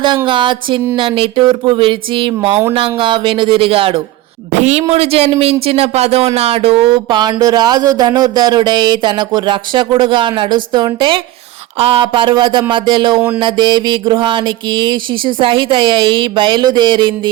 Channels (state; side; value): quieter; left; 15.8 dB